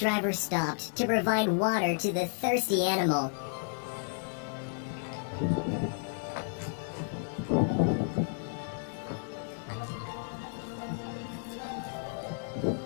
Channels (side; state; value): right; silent; 56 dB below the other